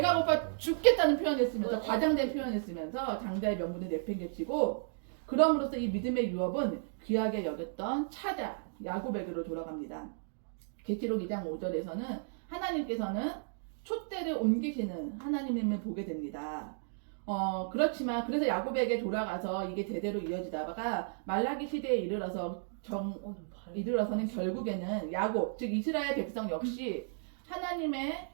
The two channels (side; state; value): left; silent; digital silence